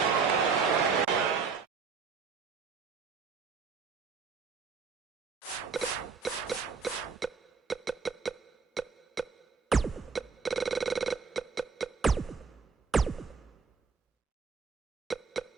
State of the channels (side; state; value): left; quieter; 5.3 dB